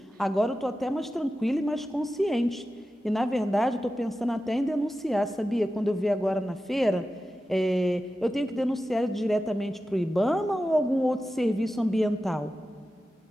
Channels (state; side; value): normal; both; correlation 0.93